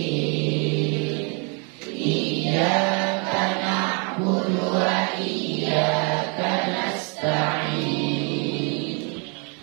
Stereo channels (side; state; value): left; quieter; 35.1 dB